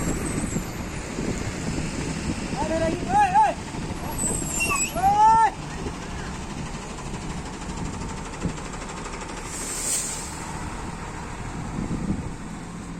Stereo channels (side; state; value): both; identical; correlation 1.00